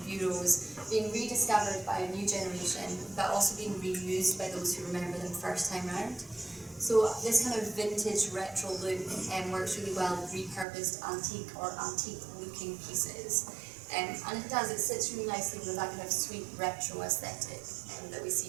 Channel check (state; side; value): drops out; left; at 10.7 s